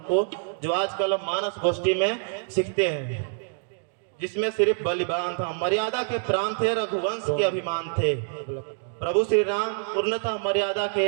को, जो आजकल हम मानस गोष्ठी में सीखते हैं, जिसमें सिर्फ बलिदान था। मर्यादा के प्राण थे, रघुवंश के अभिमान थे। प्रभु श्री राम पूर्णतः मर्यादा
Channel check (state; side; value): silent; left; 61 dB below the other